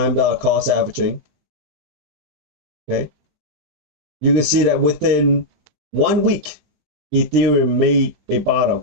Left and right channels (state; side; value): late; left; 20 ms